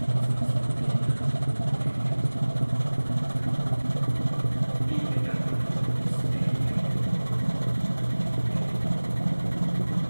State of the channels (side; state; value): both; inverted; correlation -1.00